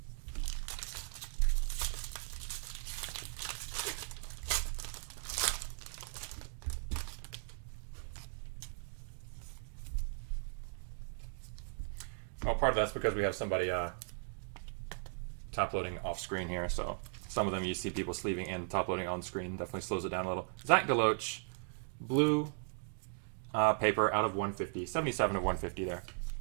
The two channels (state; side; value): silent; left; digital silence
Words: Well, part of that's because we have somebody top loading off screen here, so some of them you see people sleeving and top loading on screen. Definitely slows it down a little. Zach Deloach, blue paper out of 150, 77 of 150 there.